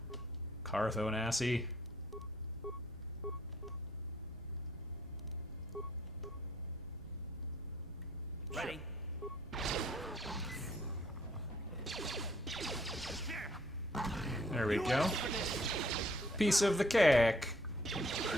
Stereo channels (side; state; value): both; normal; correlation 0.64